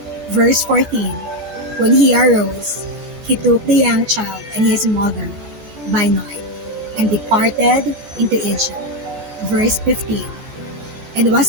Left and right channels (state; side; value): late; left; 14 ms